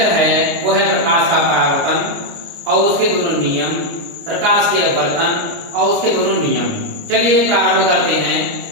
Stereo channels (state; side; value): late; left; 29 ms